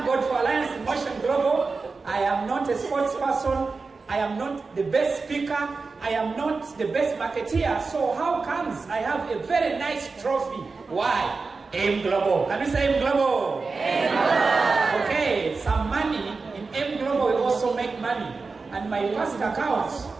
God for Alliance in Motion Global. I am not a sports person. I am not the best speaker. I am not the best marketeer. So how comes I have a very nice trophy? Why? M Global. Can we say M Global? M Global. Okay, some money in M Global will also make money. And my first account,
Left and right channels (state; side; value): quieter; left; 4.3 dB